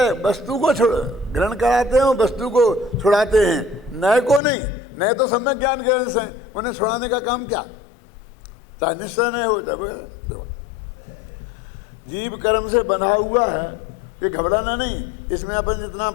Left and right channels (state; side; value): drops out; right; at 4.4 s